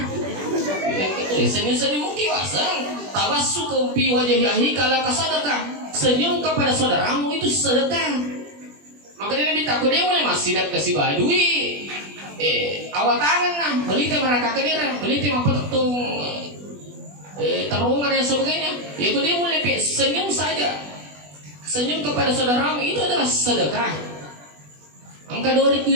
Yang itu senyum-senyum kiwasang, tawasu kumpi wajah yahi kala kasadakah. Senyum kepada saudaramu itu sedekah. Maka dia minta aku dia mulai masih dak kasih badui. Awak tangan nah, beli teh mereka kedira, beli teh apa tung terowongan dan sebagainya. Ya dia mulai senyum saja, senyum kepada saudaramu itu adalah sedekah. Angka 2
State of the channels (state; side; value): late; left; 20 ms